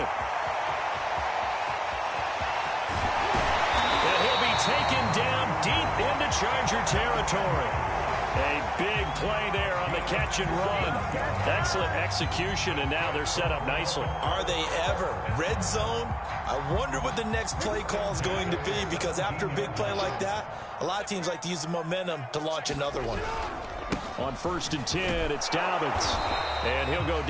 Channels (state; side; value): identical; both; correlation 1.00